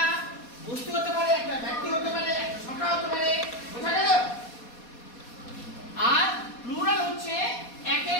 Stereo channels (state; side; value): late; right; 4.2 ms